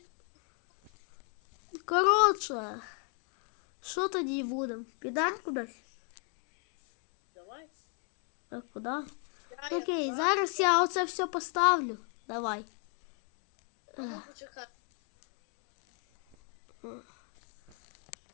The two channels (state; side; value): quieter; right; 39.9 dB